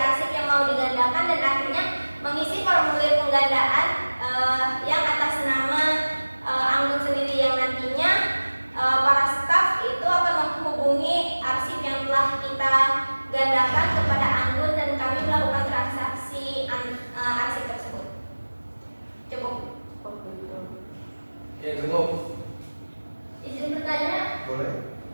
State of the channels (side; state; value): both; inverted; correlation -1.00